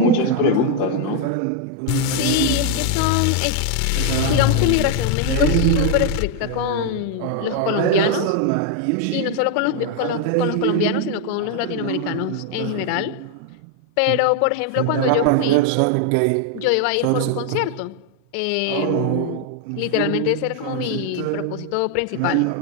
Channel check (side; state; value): both; different; correlation 0.01